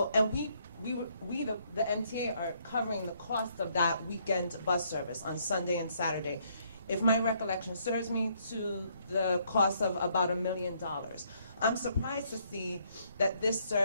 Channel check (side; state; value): both; inverted; correlation -0.69